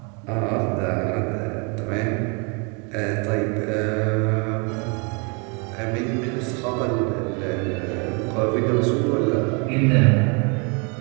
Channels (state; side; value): quieter; left; 33.7 dB